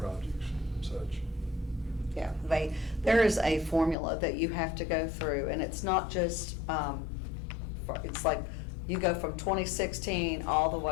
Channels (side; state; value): right; drops out; at 4.0 s